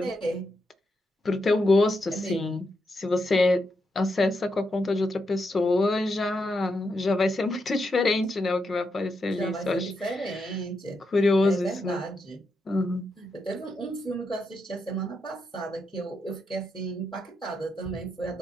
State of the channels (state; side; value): normal; both; correlation 0.83